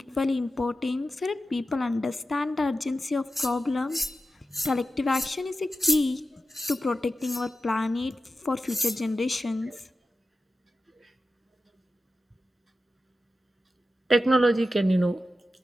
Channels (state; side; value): normal; both; correlation 0.92